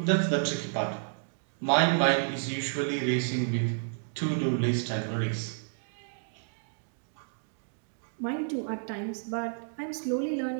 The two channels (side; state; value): left; silent; digital silence